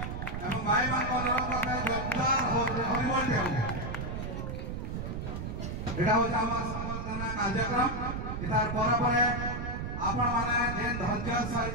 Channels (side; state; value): right; noise; rumble, 5 dB below the sound